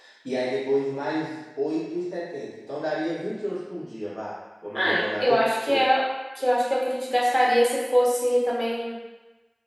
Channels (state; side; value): identical; both; correlation 1.00